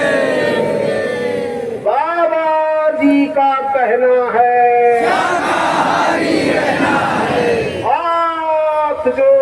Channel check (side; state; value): both; identical; correlation 1.00